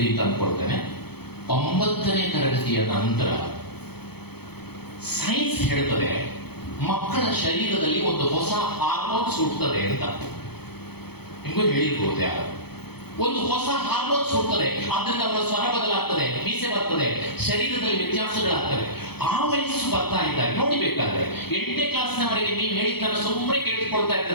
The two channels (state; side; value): late; right; 0.97 ms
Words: ಅಂತ ಅಂದ್ಕೊಳ್ತೇನೆ, 9ನೇ ತರಗತಿಯ ನಂತರ ಸೈನ್ಸ್ ಹೇಳ್ತದೆ ಮಕ್ಕಳ ಶರೀರದಲ್ಲಿ ಒಂದು ಹೊಸ ಹಾರ್ಮೋನ್ಸ್ ಹುಟ್ಟುತ್ತದೆ ಅಂತ. ನಿಮಗೂ ಹೇಳಿರ್ಬೋದು ಯಾರು, ಒಂದು ಹೊಸ ಹಾರ್ಮೋನ್ಸ್ ಹುಟ್ಟುತ್ತದೆ, ಆದ್ರಿಂದ ಅವರ ಸ್ವರ ಬದಲಾಗ್ತದೆ, ಮೀಸೆ ಬರ್ತದೆ, ಶರೀರದಲ್ಲಿ ವ್ಯತ್ಯಾಸಗಳಾಗ್ತವೆ. ಆ ವಯಸ್ಸು ಬರ್ತಾ ಇದ್ದಾರೆ ನೋಡಿಬೇಕಾದ್ರೆ. 8ನೇ ಕ್ಲಾಸ್ನವರೆಗೆ ನೀವು ಹೇಳಿದ್ದನ್ನು ಸುಮ್ಮನೆ ಕೇಳಿಸ್ಕೊಳ್ತಾ